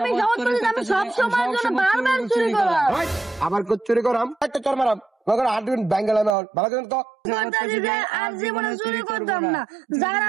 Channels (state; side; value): drops out; left; at 6.4 s